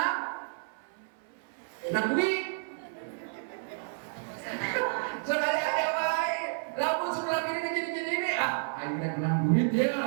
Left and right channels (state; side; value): silent; left; 57 dB below the other